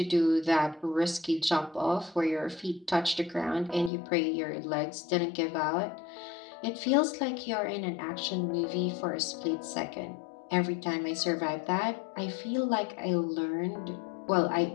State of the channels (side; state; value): right; drops out; at 3.9 s